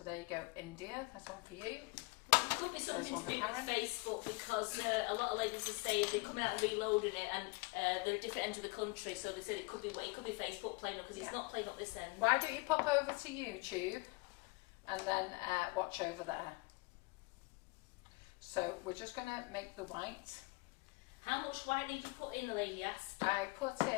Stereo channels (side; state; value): right; quieter; 26.3 dB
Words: there you go, India, that's one for you. It could be something to do with Facebook, because a lot of ladies are saying they're coming out and reloading it, and they're at different ends of the country, so they said it could be Facebook playing up, because it's not playing up this end. Why don't you pop over to YouTube and then watch over there. So we're just going to make the white. How much white did you put in, the lady asked? I put